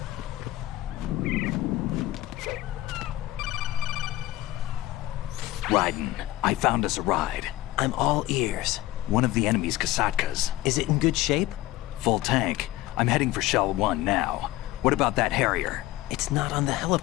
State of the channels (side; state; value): right; quieter; 16.2 dB